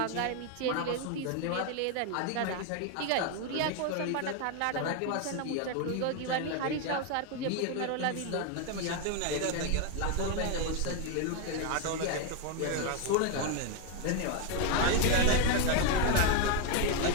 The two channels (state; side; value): different; both; correlation 0.01